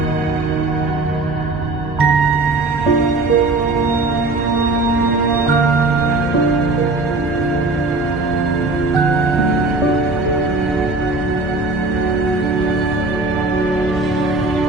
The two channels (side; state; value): left; quieter; 3.2 dB